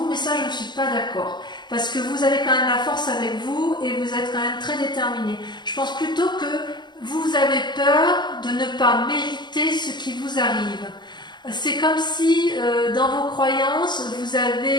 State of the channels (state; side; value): late; right; 0.21 ms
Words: mais ça je ne suis pas d'accord. Parce que vous avez quand même la force avec vous et vous êtes quand même très déterminé. Je pense plutôt que vous avez peur de ne pas mériter ce qui vous arrive. C'est comme si dans vos croyances, vous